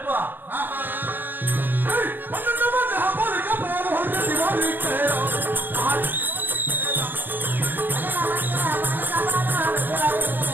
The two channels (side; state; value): left; late; 0.093 ms